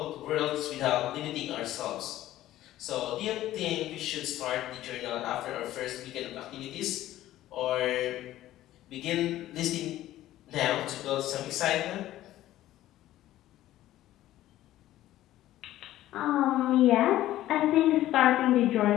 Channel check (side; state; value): right; quieter; 14.3 dB